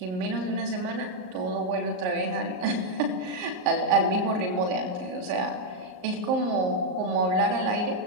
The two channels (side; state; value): left; late; 38 ms